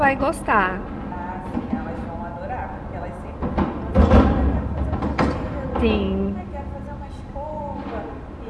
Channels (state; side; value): identical; both; correlation 1.00